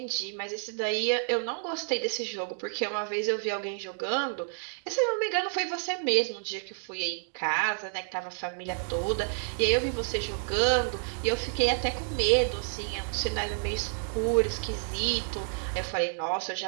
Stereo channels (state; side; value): silent; left; 58 dB below the other